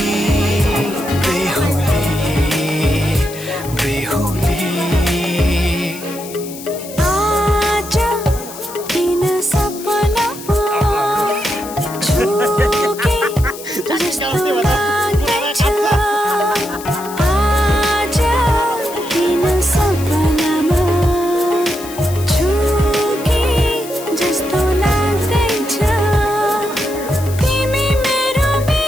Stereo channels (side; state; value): left; noise; hiss, 14 dB below the sound